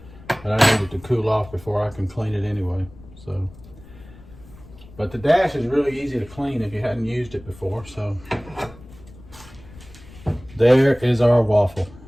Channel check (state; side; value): noise; left; rumble, 20 dB below the sound